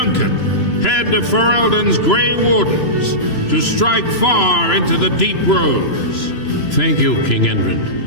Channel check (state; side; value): late; right; 3.0 ms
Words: head of Ferelden's Grey Wardens, to strike far into the deep roads. Thank you, King